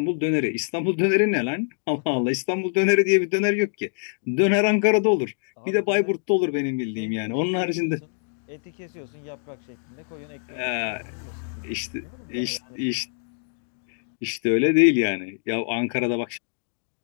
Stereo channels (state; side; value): silent; right; digital silence